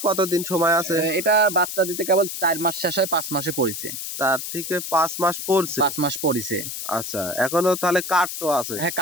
কতদিন সময় আছে? এটা বাচ্চা দিতে কেবল 4 মাস শেষ হয়, 5 মাসে পড়িছে। 4 থেকে 5 মাস পড়ছে। 5 মাস পড়িছে। আচ্ছা এখনো তাহলে কার্ডও আছে? হ্যাঁ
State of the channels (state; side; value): noise; left; hiss, 6 dB below the sound